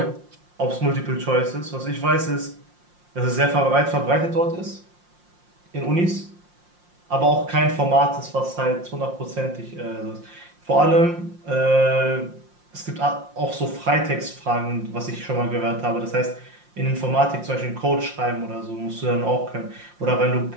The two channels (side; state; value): left; late; 5.7 ms